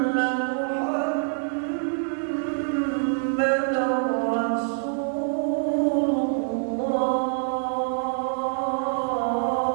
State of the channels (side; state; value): left; silent; 61 dB below the other